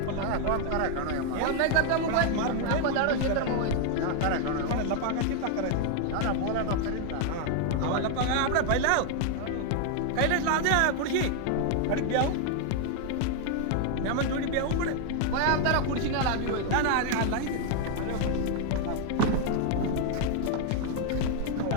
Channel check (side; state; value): both; different; correlation 0.00